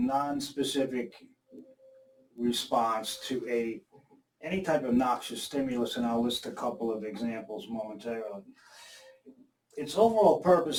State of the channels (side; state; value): both; identical; correlation 1.00